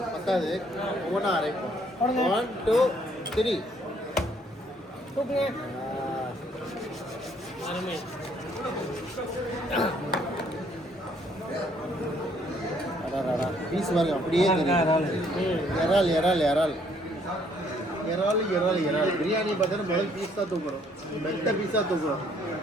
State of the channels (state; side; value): normal; both; correlation 0.65